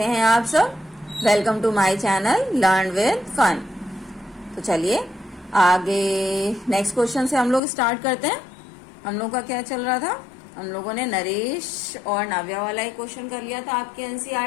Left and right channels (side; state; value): right; drops out; at 7.6 s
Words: हैं आप सब। Welcome to my channel learn with fun. तो चलिए आगे नेक्स्ट क्वेश्चन से हम लोग स्टार्ट करते हैं। हम लोग का क्या चल रहा था, हम लोगों ने नरेश और नाव्या वाला एक क्वेश्चन कर लिया था आपके